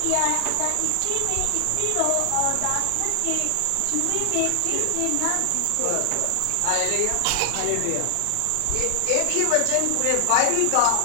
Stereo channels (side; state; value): both; different; correlation 0.00